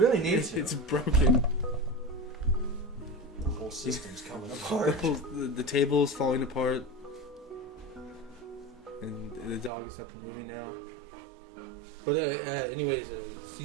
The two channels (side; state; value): left; drops out; at 9.7 s